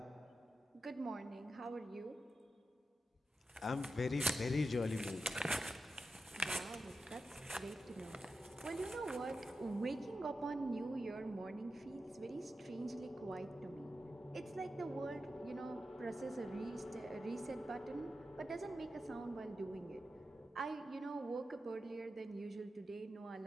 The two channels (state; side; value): normal; both; correlation 0.90